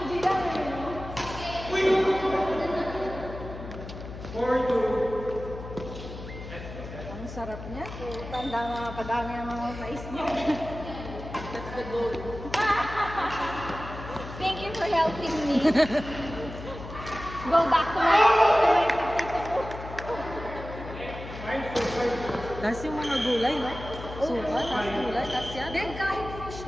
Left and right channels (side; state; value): left; noise; hum, 11 dB below the sound